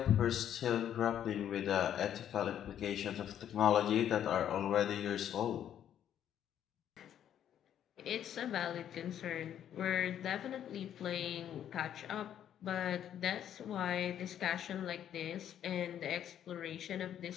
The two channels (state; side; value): quieter; right; 10.1 dB